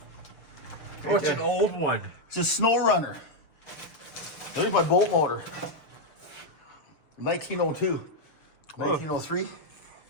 Oh, it's an old one. It's a snow runner. There's my bolt motor. 1902. 1903.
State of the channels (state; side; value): late; right; 6.8 ms